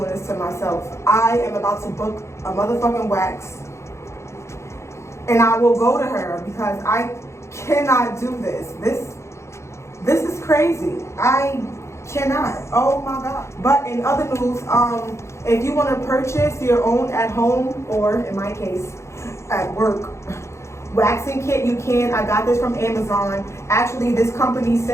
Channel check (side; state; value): right; late; 0.13 ms